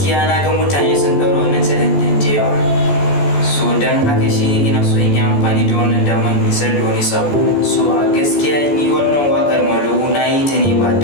na ga mutane sun ɗaura wannan channel din da yawa. So dan haka shi ina so in yi amfani da wannan damar isar da wani sabo. So a gaskiya ni wannan wakar Mulu na yi ta ne ba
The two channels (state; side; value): late; right; 14 ms